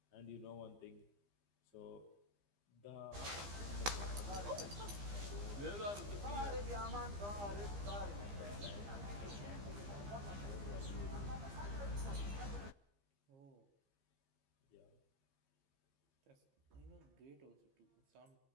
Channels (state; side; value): late; left; 15 ms